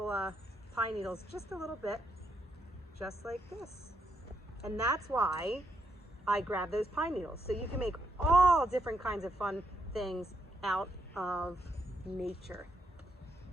pine needles just a little bit, just like this. And that's why I grabbed those pine needles. So you can make all different kinds of fun things out of nature.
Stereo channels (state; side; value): normal; both; correlation 0.78